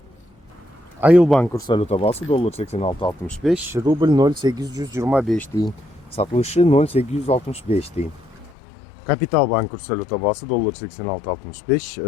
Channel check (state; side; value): drops out; right; at 8.5 s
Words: Айылбанк курс валюта баасы доллар 86.65, рубль 0.825 тиын, сатылышы 0.865 тиын. Капитал банк курс валюта баасы доллар